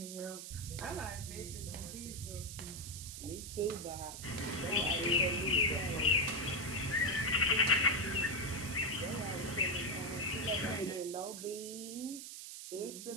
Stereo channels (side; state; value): right; noise; hiss, 9 dB below the sound